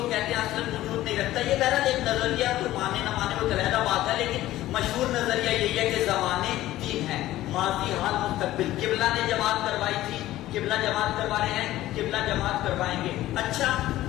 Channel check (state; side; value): quieter; right; 15.1 dB